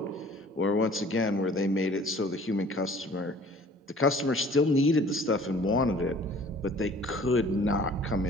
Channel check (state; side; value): normal; both; correlation 0.51